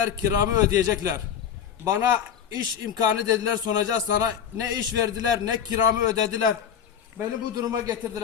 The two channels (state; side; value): quieter; right; 8.4 dB